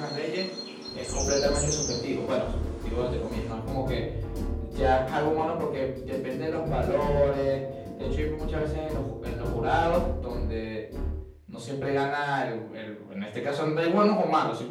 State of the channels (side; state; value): both; identical; correlation 1.00